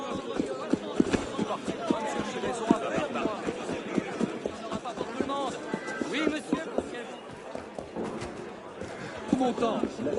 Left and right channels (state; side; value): identical; both; correlation 1.00